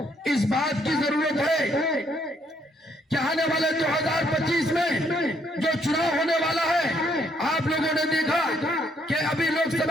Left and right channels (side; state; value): both; normal; correlation 0.70